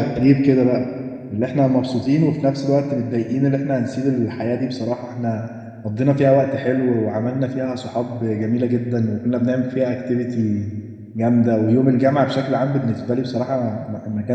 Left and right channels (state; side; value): identical; both; correlation 1.00